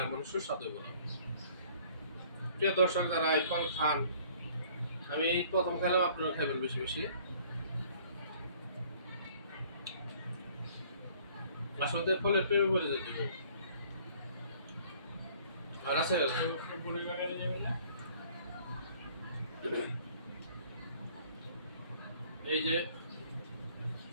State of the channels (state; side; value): inverted; both; correlation -0.55